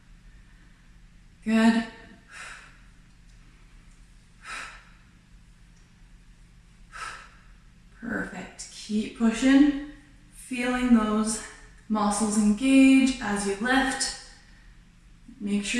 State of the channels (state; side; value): identical; both; correlation 1.00